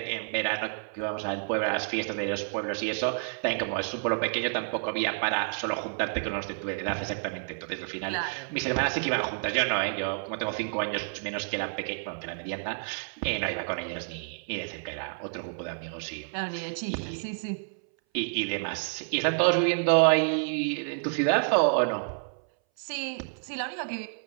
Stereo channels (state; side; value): silent; left; 58 dB below the other